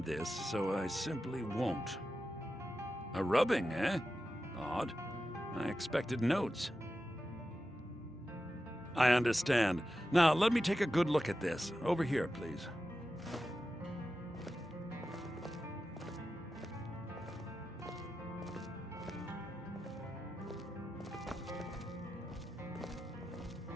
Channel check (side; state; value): both; normal; correlation 0.91